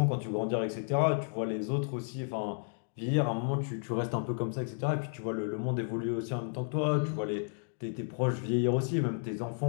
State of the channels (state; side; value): silent; right; digital silence